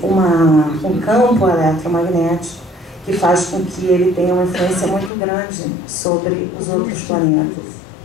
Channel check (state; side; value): drops out; right; at 5.1 s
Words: um campo eletromagnético que faz com que ele tenha uma influência muito grande sobre os outros planetas.